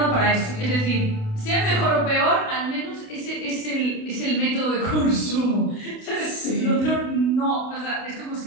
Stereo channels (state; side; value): late; right; 28 ms